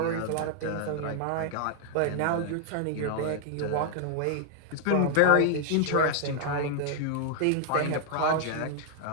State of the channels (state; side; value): different; both; correlation 0.00